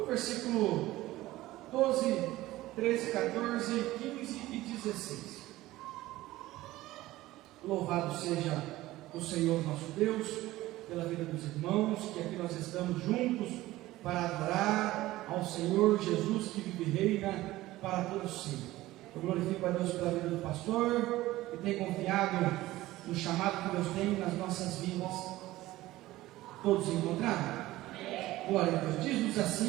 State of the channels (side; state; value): left; quieter; 17.0 dB